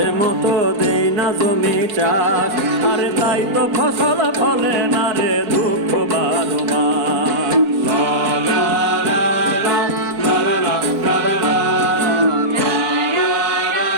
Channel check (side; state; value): left; late; 4.4 ms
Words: মতো দেই না জমি চাষ, আরে তাই তো ফসল ফলে না রে দুঃখ 12 মাস।